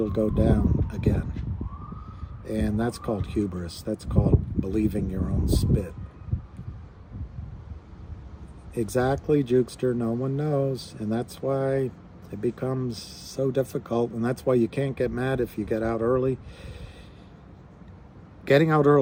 go down again. And that's called hubris. That's called believing your own spit. Exactly, Jukester. No one knows. And that's why it becomes so difficult. And that's why you can't get mad if you get out early. Getting out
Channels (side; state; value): both; identical; correlation 1.00